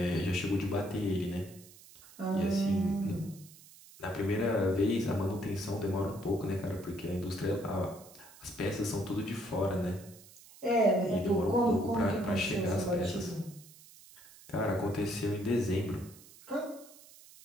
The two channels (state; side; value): noise; right; hiss, 21 dB below the sound